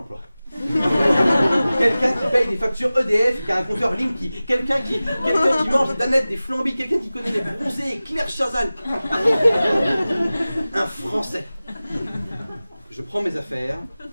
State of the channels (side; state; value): both; inverted; correlation -0.97